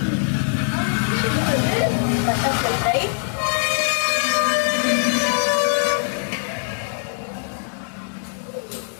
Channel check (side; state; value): right; silent; digital silence